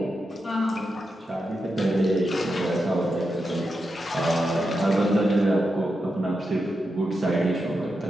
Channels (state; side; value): normal; both; correlation 0.87